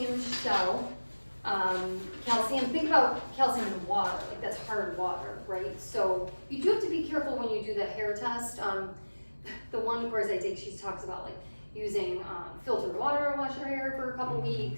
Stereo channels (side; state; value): both; inverted; correlation -1.00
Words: shell. Calcium, think about calcium in water, like that's hard water, right? So you do have to be careful when you do the hair test. The one course I take, she talks about like using filtered water to wash your hair for a couple